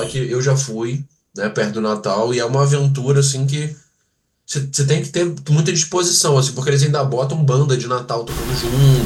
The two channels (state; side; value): identical; both; correlation 1.00